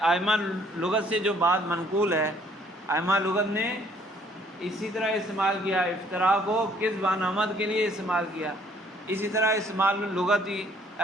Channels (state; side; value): normal; both; correlation 0.62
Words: لغت سے جو بات منقول ہے، ائمہ لغت نے اسی طرح استعمال کیا، افتراء کو کذب عن عمد کے لیے استعمال کیا، اسی طرح استعمال لغتی